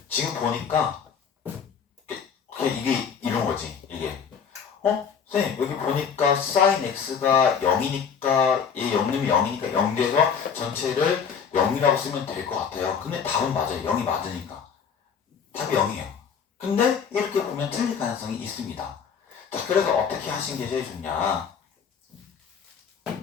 지금 보니까 이게 이런 거지. 이게 선생님 여기 보니까 사인 x가 0이니까 얘 0이면 0이니까 0 돼서 전체를 0이라고 쓰면 될 것 같아요. 근데 답은 맞아요. 0이 맞으니까 답이 0이에요. 근데 이렇게 보면 틀릴 가능성이 있습니다. 자, 그래서 어떻게 하신 게 제일 좋냐?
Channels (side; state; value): right; quieter; 6.8 dB